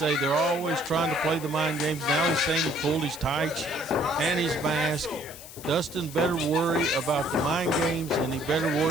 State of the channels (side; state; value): left; noise; hiss, 15 dB below the sound